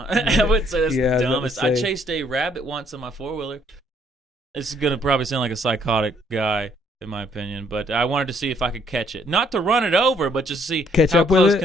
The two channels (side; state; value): both; normal; correlation 0.66